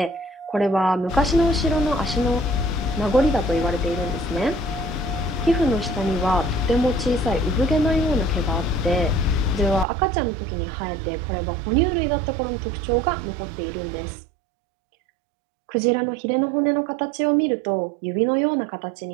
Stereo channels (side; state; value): left; drops out; at 9.9 s